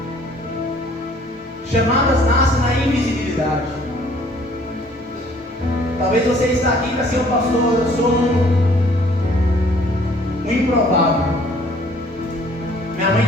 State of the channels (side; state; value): both; normal; correlation 0.58